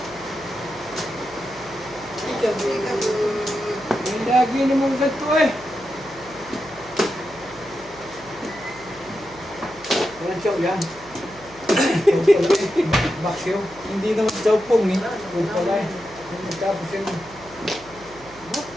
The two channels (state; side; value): noise; right; hum, 23 dB below the sound